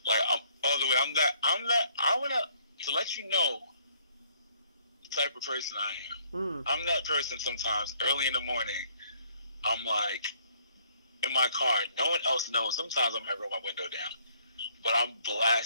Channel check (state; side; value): inverted; both; correlation -0.64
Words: like I'm all the way. I wanna to let you know the type of person I am. I'm that person sometimes early in the morning. I'm like in my car. No one else knows. Sometimes I might roll my window down, but I'm